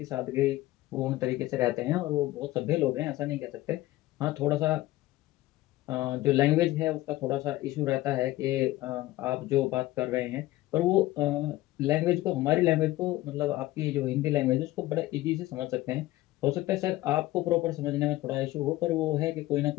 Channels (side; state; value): right; quieter; 16.9 dB